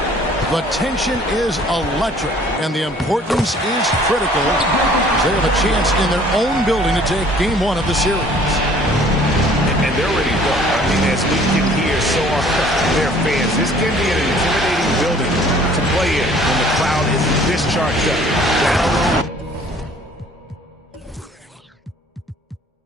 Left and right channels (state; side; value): normal; both; correlation 0.54